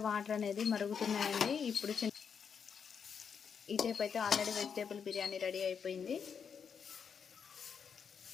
వాటర్ అనేది మరుగుతున్నాయండి. ఇప్పుడు ఈ టైప్ అయితే ఆల్రెడీ వెజిటేబుల్ బిర్యానీ రెడీ అయిపోయింది.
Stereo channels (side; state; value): right; quieter; 6.8 dB